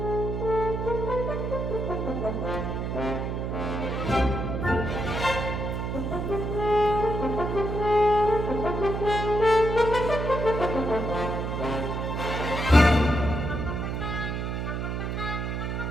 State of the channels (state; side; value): noise; right; hum, 2 dB below the sound